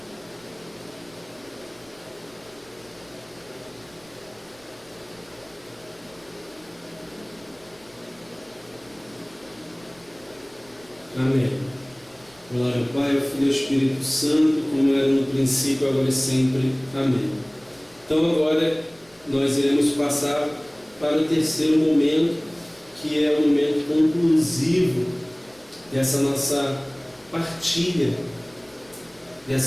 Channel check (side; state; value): right; noise; rumble, 30 dB below the sound